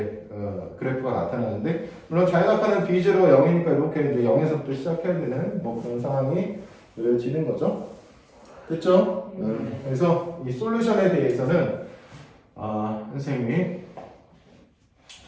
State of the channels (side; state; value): both; identical; correlation 1.00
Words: 그래프가 나타나는데 물론 자유낙하는 B0가 0이니까 이렇게 이제 0에서부터 시작해야 되는 뭐 그런 상황이 느려지는 거죠. 됐죠? 그래서 이 솔루션에 대해서는 선생님이